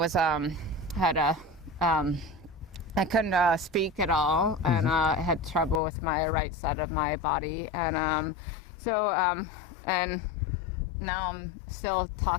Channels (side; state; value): right; drops out; at 5.8 s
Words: I couldn't speak at all, and I had trouble with my right side of my body, and and now I'm still